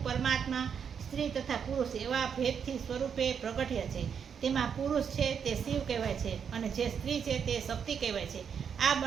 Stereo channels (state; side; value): quieter; left; 7.2 dB